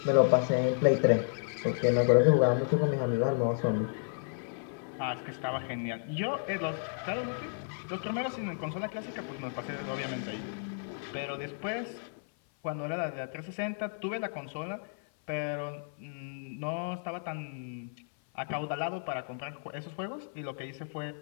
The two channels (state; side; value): silent; right; 56 dB below the other